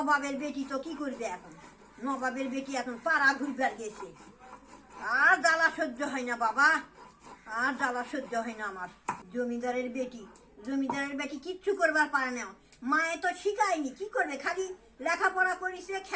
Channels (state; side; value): identical; both; correlation 1.00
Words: বেটি তো কি করবে এখন, নবাবের বেটি এখন পাড়া ঘুরবার গেছে। আর জ্বালা সহ্য হয় না বাবা, আর জ্বালা সহ্য হয় না আমার। জমিদারের বেটি কিচ্ছু করবার পারে না, মায়ে তো শিখায়নি, কি করবে, খালি লেখাপড়া করিছে,